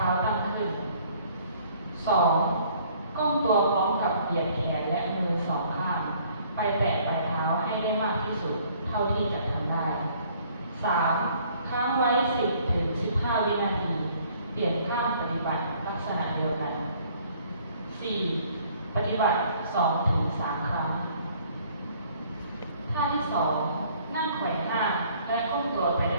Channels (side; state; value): both; inverted; correlation -0.59